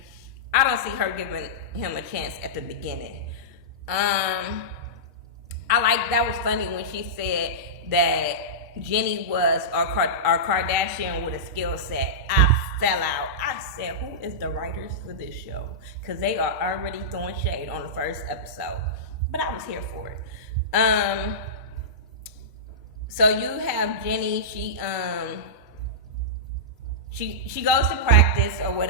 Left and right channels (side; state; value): both; normal; correlation -0.15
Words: I don't see her giving him a chance at the beginning. That was funny when she said that Jenny was our Kardashian with a skill set. I fell out. I said, who is the writers for this show? Because they are already throwing shade on the first episode. But I was here for it. So you have Jenny. She goes to practice or